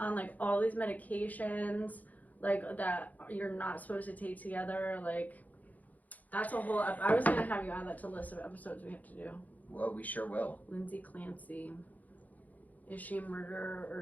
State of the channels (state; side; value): late; right; 0.079 ms